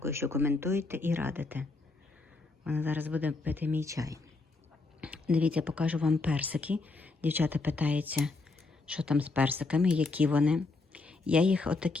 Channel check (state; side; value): quieter; right; 3.6 dB